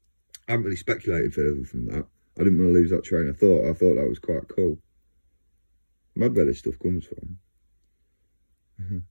I haven't really speculated further from that. I didn't want to lose that train of thought. I thought that was quite cool. Mad where this stuff comes from.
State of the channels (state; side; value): inverted; both; correlation -1.00